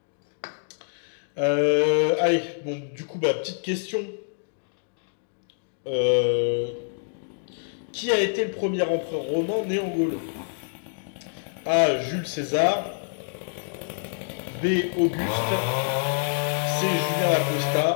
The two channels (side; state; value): right; silent; digital silence